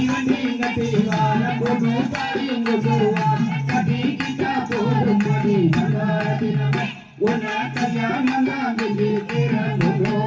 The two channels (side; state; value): both; identical; correlation 1.00